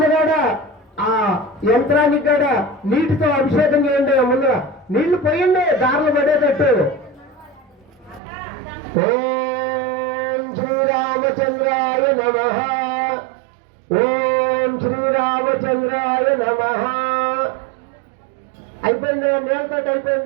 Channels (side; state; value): left; drops out; at 8.2 s